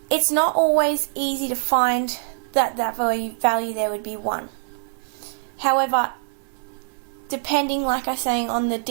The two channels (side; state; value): left; silent; digital silence